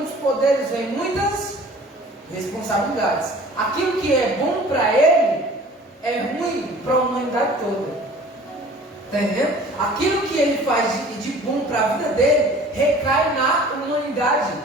poderes vem muitas responsabilidades. Aquilo que é bom para ele é ruim para a humanidade toda. Está entendendo? Aquilo que ele faz de bom para a vida dele recai na humanidade.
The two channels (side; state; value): both; normal; correlation 0.47